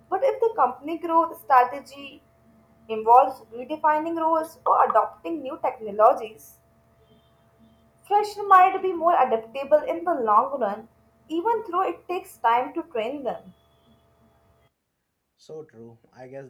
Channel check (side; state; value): both; identical; correlation 1.00